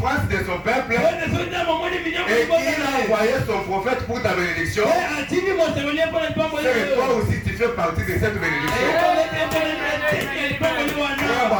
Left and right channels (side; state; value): both; identical; correlation 1.00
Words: de son peuple et qu'il a envoyé son prophète pour ta bénédiction, c'est que toi aussi tu fais partie de cette bénédiction.